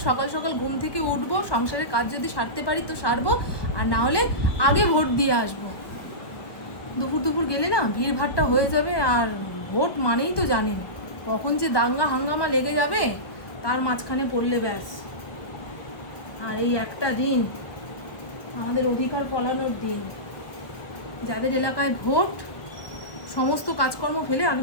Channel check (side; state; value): right; late; 1.3 ms